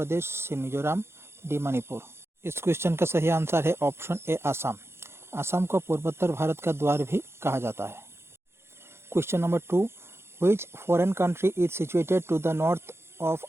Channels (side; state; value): left; late; 0.12 ms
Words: सी मिजोरम, डी मणिपुर। इस क्वेश्चन का सही आंसर है ऑप्शन ए आसाम। आसाम को पूर्वोत्तर भारत का द्वार भी कहा जाता है। Question number 2, which foreign country is situated to the north of